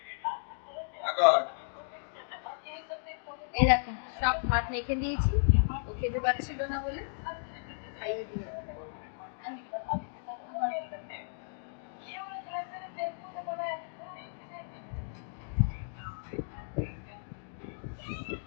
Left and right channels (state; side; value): silent; right; digital silence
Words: আগর এই দেখো সব ভাত মেখে দিয়েছি, ও খেতে পারছিল না বলে খাইয়ে দিয়ে।